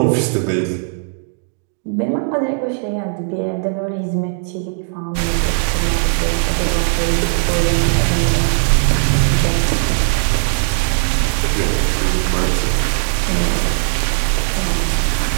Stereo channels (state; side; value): silent; left; 68 dB below the other